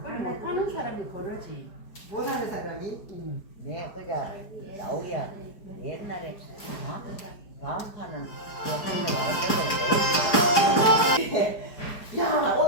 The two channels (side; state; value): right; late; 4.8 ms